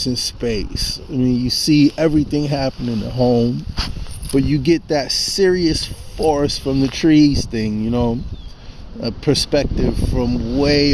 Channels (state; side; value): identical; both; correlation 1.00